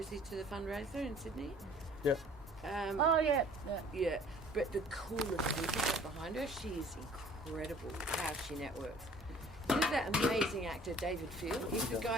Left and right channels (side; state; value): both; normal; correlation 0.52